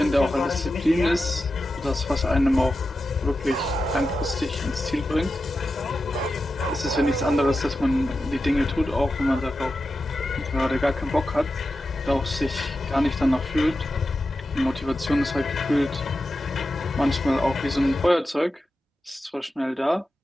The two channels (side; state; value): both; normal; correlation 0.91